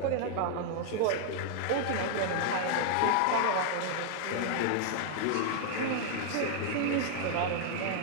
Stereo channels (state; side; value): different; both; correlation 0.00